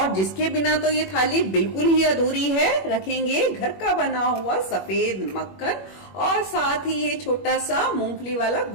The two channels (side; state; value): right; late; 21 ms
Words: जिसके बिना तो ये थाली बिल्कुल ही अधूरी है, रखेंगे घर का बना हुआ सफेद मक्खन और साथ ही ये छोटा सा मूंगफली वाला